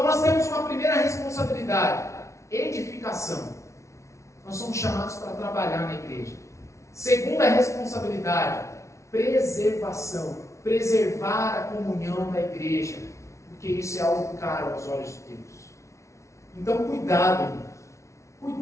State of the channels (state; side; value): late; right; 0.14 ms